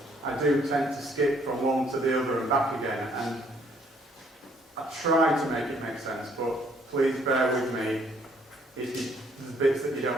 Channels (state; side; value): normal; both; correlation 0.64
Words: I do tend to skip from one to the other and back again. And I try to make it make sense, but please bear with me if there's bits that you